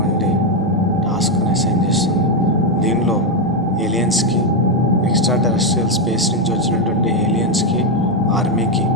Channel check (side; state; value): both; normal; correlation 0.05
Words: టాస్క్ని అసైన్ చేస్తుంది. దీనిలో ఏలియన్స్కి, ఎక్స్ట్రా టెరెస్ట్రియల్ స్పేస్ నుంచి వచ్చినటువంటి ఏలియన్స్కి, ఆర్మీకి